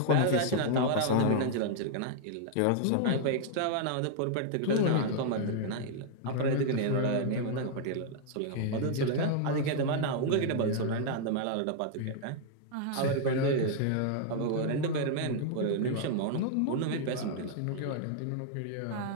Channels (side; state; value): both; different; correlation -0.01